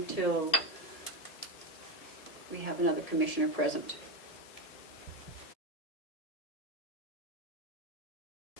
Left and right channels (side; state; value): right; late; 1.7 ms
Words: we have another commissioner present.